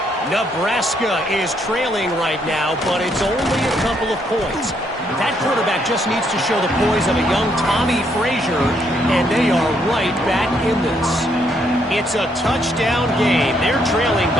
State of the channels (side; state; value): both; normal; correlation 0.72